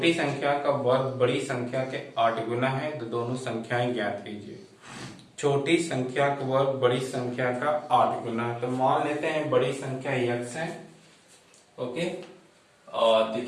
संख्या का वर्ग बड़ी संख्या के 8 गुना है, तो दोनों संख्याएं ज्ञात कीजिए। छोटी संख्या का वर्ग बड़ी संख्या का 8 गुना है, तो मान लेते हैं बड़ी संख्या x है। ओके, और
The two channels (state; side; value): identical; both; correlation 1.00